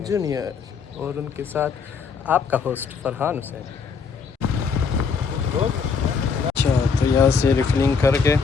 जूनियर और उनके साथ आपका होस्ट फरहान हुसैन। अच्छा, तो यहाँ से रिफिलिंग करके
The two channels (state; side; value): quieter; right; 5.6 dB